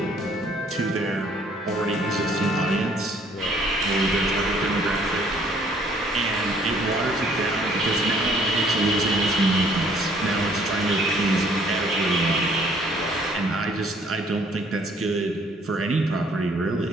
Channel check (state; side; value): normal; both; correlation 0.61